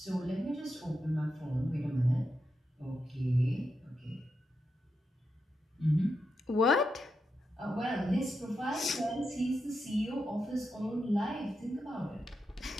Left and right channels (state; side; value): normal; both; correlation 0.86